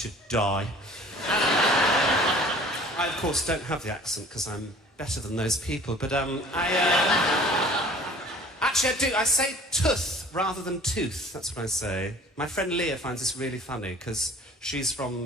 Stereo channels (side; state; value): both; normal; correlation 0.48